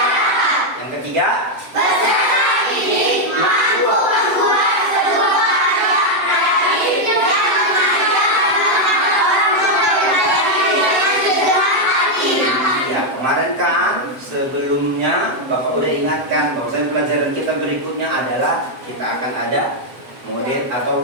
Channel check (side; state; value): left; late; 7.7 ms